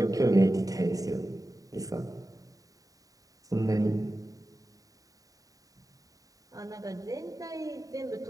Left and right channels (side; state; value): left; late; 0.17 ms